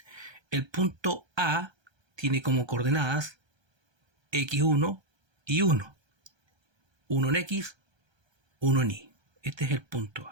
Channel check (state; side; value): late; left; 1.3 ms